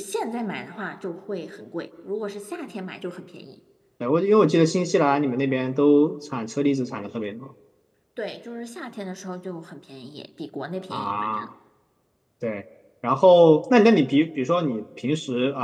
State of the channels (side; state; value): both; identical; correlation 1.00